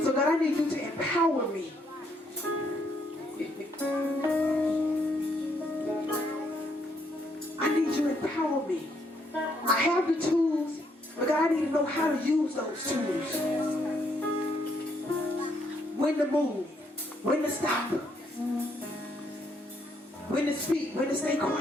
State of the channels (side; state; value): both; normal; correlation 0.72